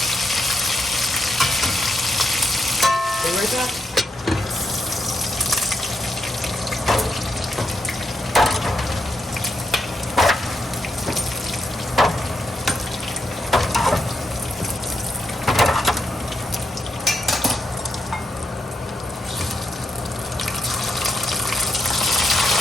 Be right back.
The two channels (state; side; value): normal; both; correlation 0.82